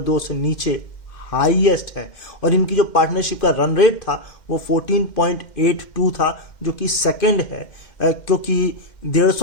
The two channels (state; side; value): late; right; 2.1 ms